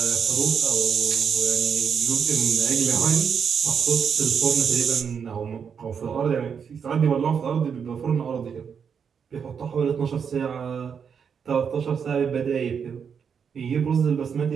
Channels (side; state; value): left; quieter; 6.9 dB